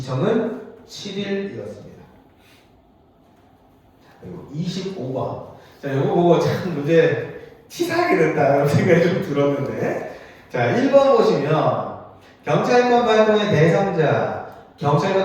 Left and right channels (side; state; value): both; identical; correlation 1.00